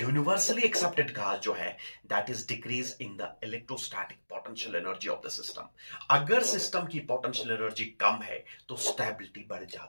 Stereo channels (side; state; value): both; inverted; correlation -1.00